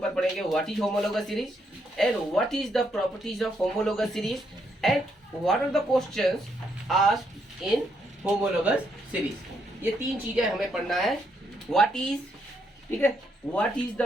पढ़ेंगे what is homologous series and what is the properties of homologous series and what are the questions asked in homologous series. ये तीन चीजें हमें पढ़ना है। व्हाट इज, ठीक है, what is the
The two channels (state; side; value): normal; both; correlation 0.76